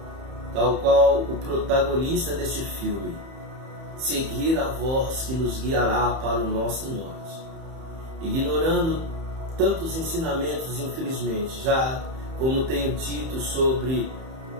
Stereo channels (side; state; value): left; late; 31 ms